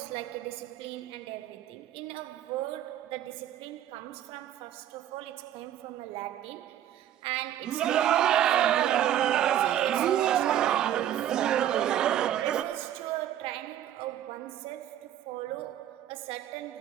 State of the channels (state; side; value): quieter; left; 11.4 dB